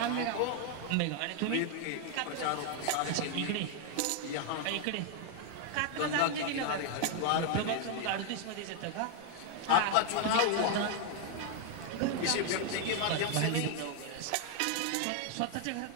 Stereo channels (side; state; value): both; different; correlation 0.00